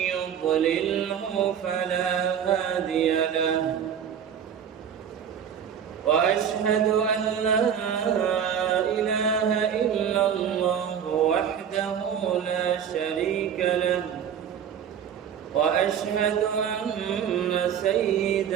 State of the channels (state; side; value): quieter; left; 8.4 dB